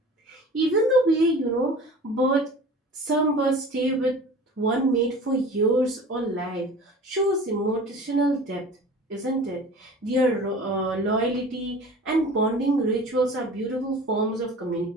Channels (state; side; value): normal; both; correlation 0.40